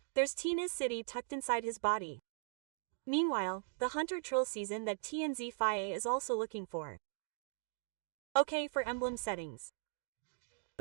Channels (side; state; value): left; silent; digital silence